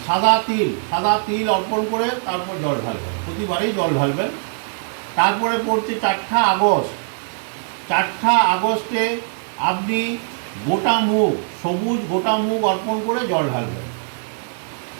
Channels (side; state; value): left; silent; digital silence